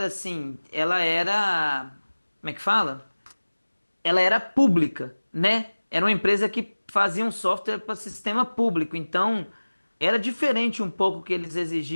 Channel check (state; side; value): inverted; both; correlation -1.00